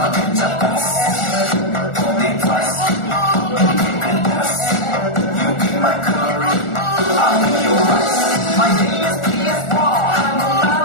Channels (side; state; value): right; late; 1.4 ms